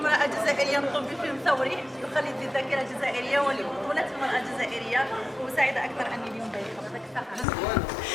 جزائرية تقوم بفيلم ثوري يخلد الذاكرة الجزائرية ولبطولة المرأة الجزائرية، وسعيدة أكثر أني اليوم ضيفة.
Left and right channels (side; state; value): both; normal; correlation 0.91